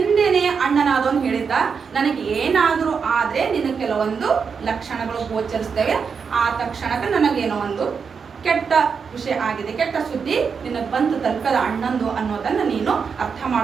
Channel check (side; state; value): left; quieter; 5.9 dB